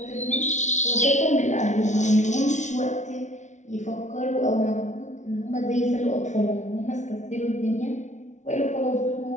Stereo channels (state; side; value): late; right; 0.35 ms